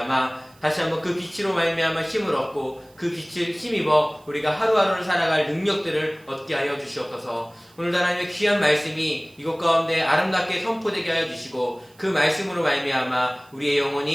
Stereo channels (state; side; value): noise; right; hiss, 30 dB below the sound